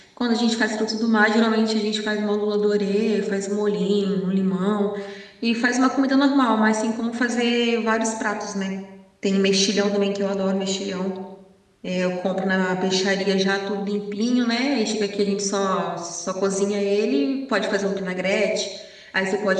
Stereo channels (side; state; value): both; identical; correlation 1.00